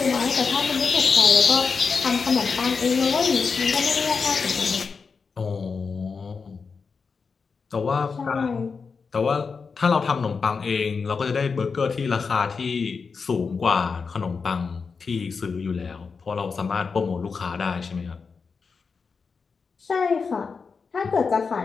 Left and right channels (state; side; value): quieter; right; 5.1 dB